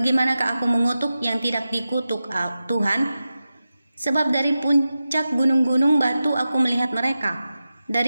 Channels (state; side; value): inverted; both; correlation -0.93